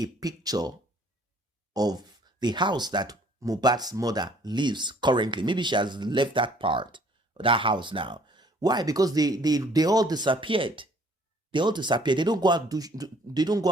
picture of the house that Mohbad's mother lives currently. Maybe she has left that part, that house now. Why? Because they all disappeared. They all disappeared. They don't go out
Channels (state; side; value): normal; both; correlation 0.58